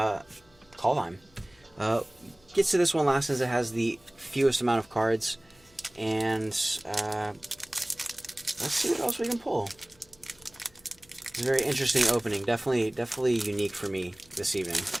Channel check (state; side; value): noise; left; hum, 30 dB below the sound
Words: Gets to this one last as it has the fewest amount of cards. And let's see what else we can pull. It's a very interesting opening. Definitely unique for me this evening.